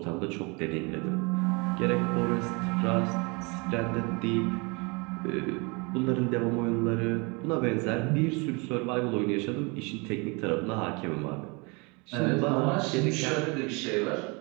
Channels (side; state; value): left; quieter; 29.5 dB